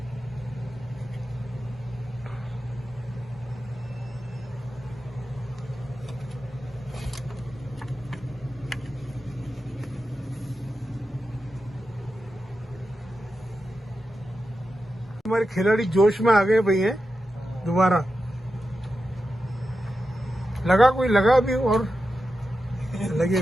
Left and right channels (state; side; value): normal; both; correlation 0.90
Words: हमारे खिलाड़ी जोश में आ गए भैया, दोबारा लगा, कोई लगा भी और